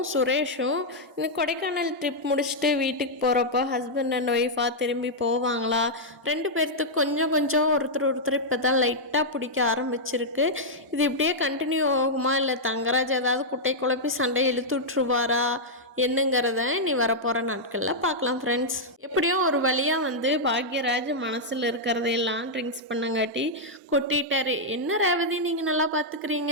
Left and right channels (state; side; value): normal; both; correlation -0.06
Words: சுரேஷும் இந்த கொடைக்கானல் ட்ரிப் முடிச்சுட்டு வீட்டுக்கு போகிறப்போ ஹஸ்பண்ட் அண்ட் ஒய்ஃபாக திரும்பி போவாங்களா? ரெண்டு பேர்த்துக்கு கொஞ்சம் கொஞ்சம் ஒருத்தர் இப்போ தான் லைட்டாக பிடிக்க ஆரம்பிச்சிருக்கு. இது இப்படியே கண்டினியூ ஆகுமா, இல்லை தங்கராஜ் ஏதாவது குட்டை குழப்பி சண்டை இழுத்து விட்ருவாரா என்னங்கிறத நீ வரப்போகிற நாட்களில் பார்க்கலாம் ஃப்ரெண்ட்ஸ். எப்படியும் ஒரு வழியாக பாக்யராஜ் மனசில் இருக்கிறதையெல்லாம் ட்ரிங்க்ஸ் பண்ணங்காட்டி கொட்டிட்டாரு. என்ன ரேவதி, நீங்கள் நல்லா பார்த்துக்கிறீங்க,